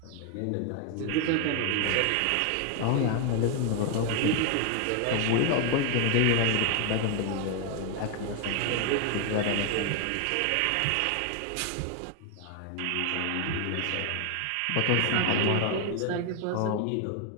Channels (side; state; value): both; different; correlation 0.01